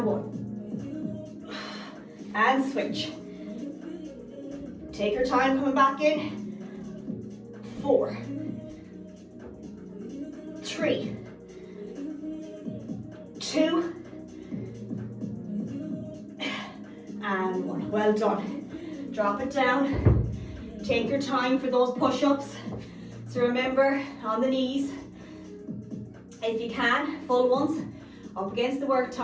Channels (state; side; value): identical; both; correlation 1.00